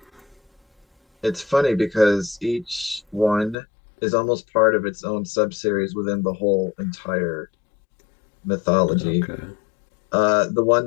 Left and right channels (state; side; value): drops out; right; at 3.6 s